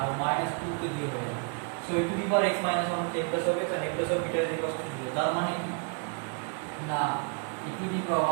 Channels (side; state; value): left; quieter; 38.2 dB